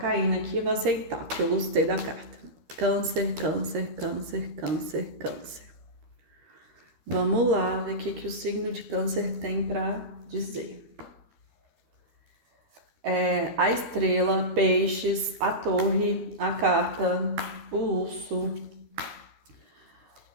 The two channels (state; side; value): late; left; 13 ms